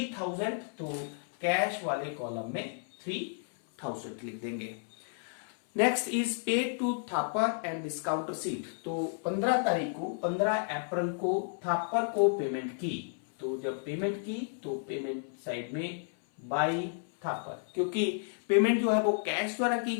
तो कैश वाले कॉलम में 3000 लिख देंगे। Next is paid to Thapar and discount received. तो 15 तारीख को 15 अप्रैल को थापर को पेमेंट की, तो जब पेमेंट की तो पेमेंट साइड में बाई थापर, क्योंकि पेमेंट जो है वो कैश द्वारा की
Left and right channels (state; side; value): silent; right; 56 dB below the other